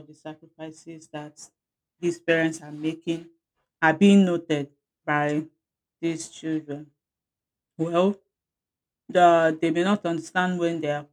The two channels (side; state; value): both; identical; correlation 1.00